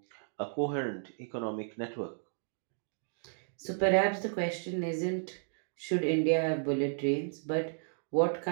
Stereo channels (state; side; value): silent; left; digital silence